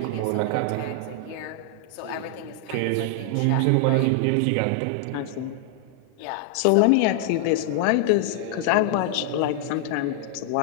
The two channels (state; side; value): different; both; correlation 0.00